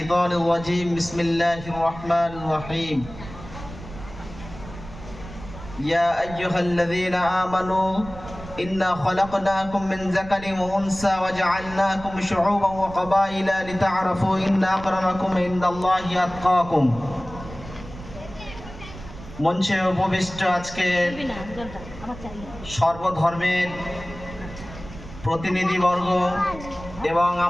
الرجيم. بسم الله الرحمن الرحيم. يا أيها الذين آمنوا إنا خلقناكم من ذكر وأنثى وجعلناكم شعوبا وقبائل لتعرفوا إن أكرمكم عند الله أتقاكم. মঞ্চে উপবিষ্ট আজকে সর্বধর্মের প্রতিনিধিবর্গ এবং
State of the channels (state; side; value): noise; right; rumble, 14 dB below the sound